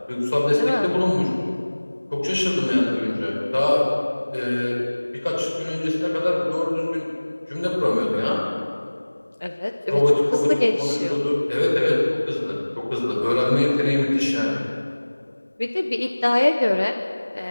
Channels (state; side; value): inverted; both; correlation -1.00